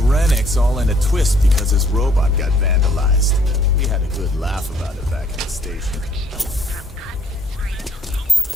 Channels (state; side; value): normal; both; correlation 0.63